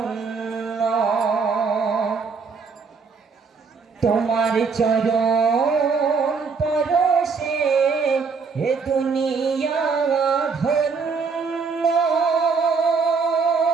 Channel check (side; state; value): left; quieter; 5.1 dB